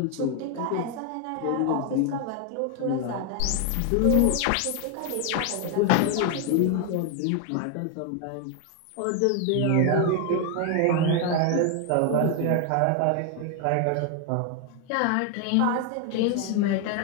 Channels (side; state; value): both; different; correlation 0.01